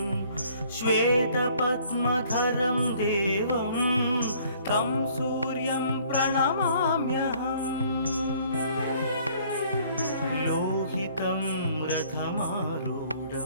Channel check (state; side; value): inverted; both; correlation -0.58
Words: श्वेतपद्मधरं देवं तं सूर्यं प्रणमाम्यहम् लोहितं